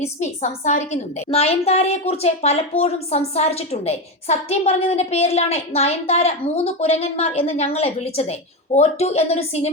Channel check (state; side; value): normal; both; correlation 0.14